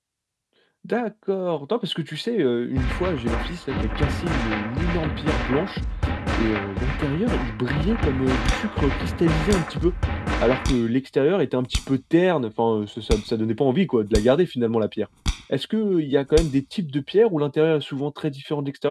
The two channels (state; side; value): identical; both; correlation 1.00